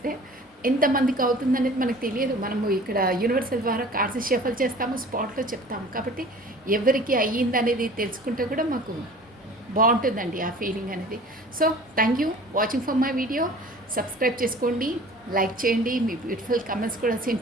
ఎంతమందికి అవుతుందనేది మనకు తెలియదు. మనము ఇక్కడ యూనివర్సల్ ద్వారా కార్డ్స్ షఫల్ చేస్తాము, స్పాట్లో చెప్తాము. కాబట్టి ఎవరికి అయ్యిందనేది తెలుసుకుంటే కూడా మాకు బాగుంటుందండి ఆ ఫీలింగ్ అనేది. So thank you watching for my video. Subscribe చేసుకోండి, లైక్ చేయండి, మీ బ్యూటిఫుల్ కమెంట్స్ కూడా సెండ్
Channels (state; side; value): normal; both; correlation 0.45